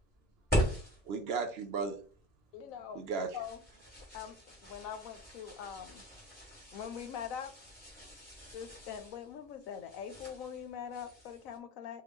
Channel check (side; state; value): both; normal; correlation 0.38